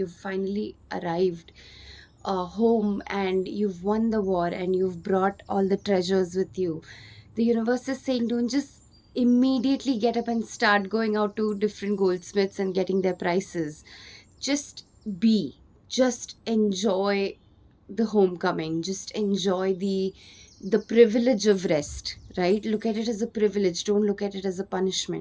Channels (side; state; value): both; identical; correlation 1.00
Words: finally arrived home, and you've won the war, and you've brought all the treasures with you. The universe is saying, don't just immediately get up and start going out to different goldsmiths and getting their prices. Just be. Just enjoy the homecoming. Just enjoy the privilege of rest, right? Look at it as a privilege. Don't look at it as a